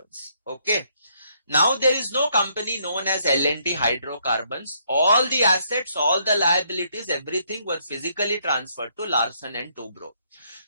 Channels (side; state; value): both; inverted; correlation -0.70